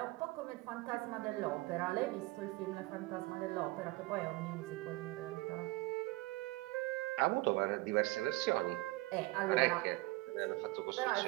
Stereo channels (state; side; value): quieter; left; 21.7 dB